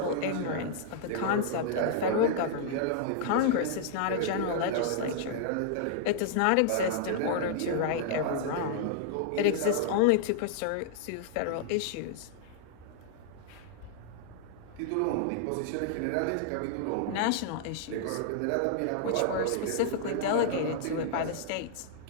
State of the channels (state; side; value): different; both; correlation -0.01